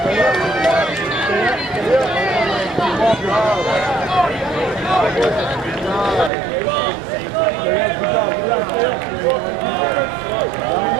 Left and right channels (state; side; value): drops out; left; at 6.3 s